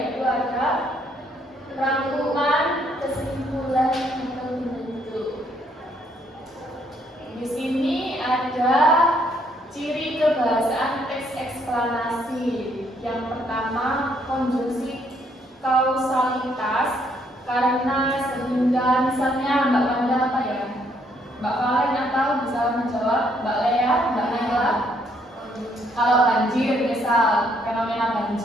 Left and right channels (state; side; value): normal; both; correlation 0.69